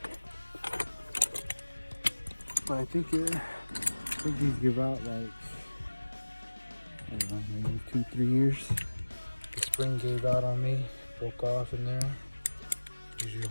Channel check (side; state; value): both; inverted; correlation -1.00